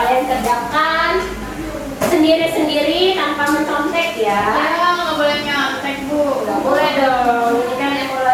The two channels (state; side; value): identical; both; correlation 1.00